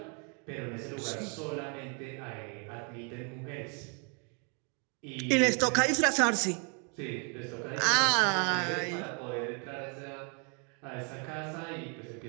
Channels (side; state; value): left; quieter; 37.1 dB